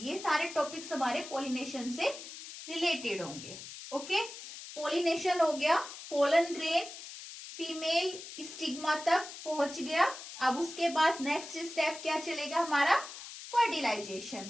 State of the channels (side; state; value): left; noise; hiss, 12 dB below the sound